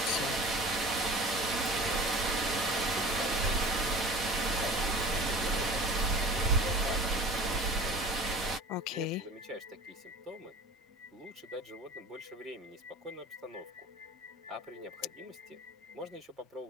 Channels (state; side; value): normal; both; correlation 0.40